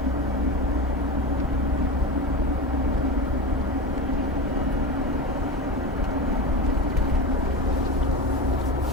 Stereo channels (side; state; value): both; normal; correlation 0.24